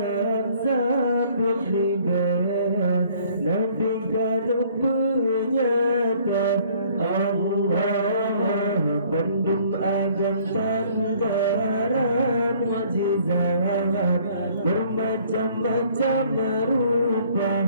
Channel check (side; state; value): both; inverted; correlation -0.58